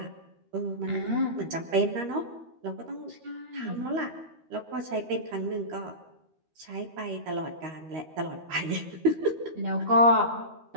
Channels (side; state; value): left; late; 13 ms